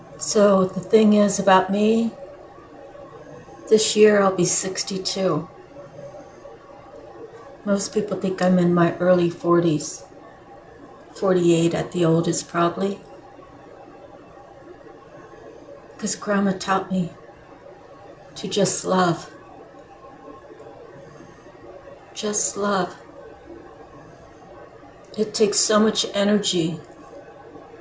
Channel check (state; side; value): identical; both; correlation 1.00